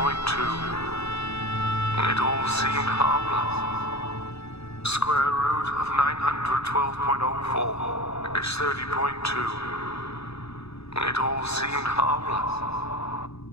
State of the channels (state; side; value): late; right; 0.79 ms